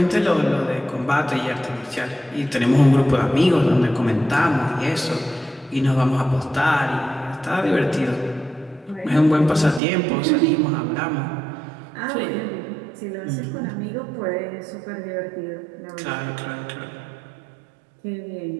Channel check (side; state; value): left; drops out; at 9.8 s